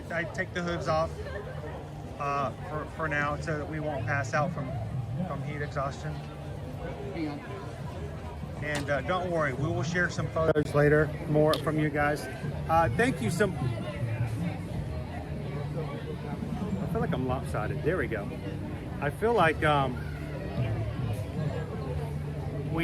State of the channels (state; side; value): identical; both; correlation 1.00